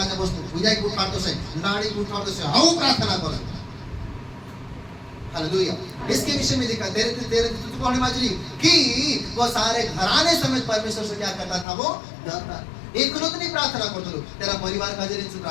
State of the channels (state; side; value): drops out; right; at 11.7 s